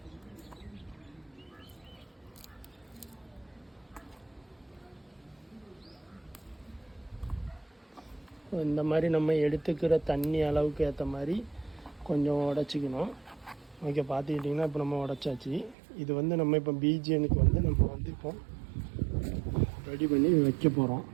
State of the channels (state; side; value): drops out; left; at 15.8 s